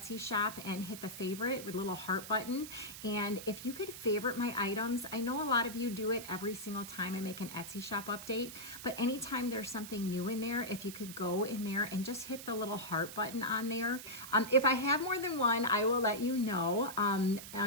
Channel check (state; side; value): noise; right; hiss, 11 dB below the sound